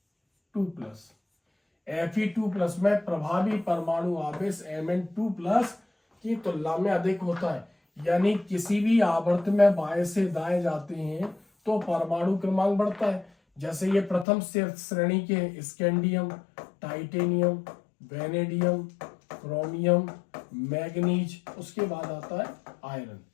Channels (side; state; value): right; drops out; at 14.2 s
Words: में प्रभावी परमाणु आवेश Mn2+ की तुलना में अधिक होता है। यानी किसी भी आवर्त में बाएं से दाएं जाते हैं तो परमाणु क्रमांक बढ़ता है। जैसे ये प्रथम श्रेणी के scandium, titanium, vanadium, chromium, manganese, उसके बाद आता है आयरन।